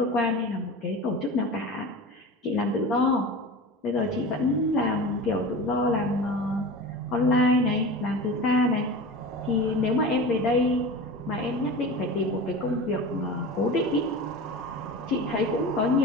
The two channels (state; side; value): normal; both; correlation 0.32